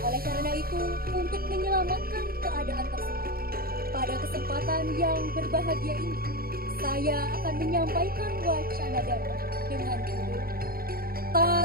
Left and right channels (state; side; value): late; left; 0.43 ms